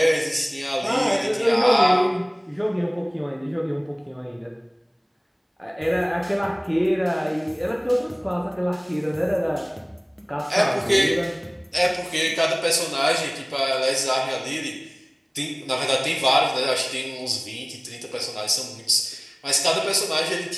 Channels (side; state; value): both; identical; correlation 1.00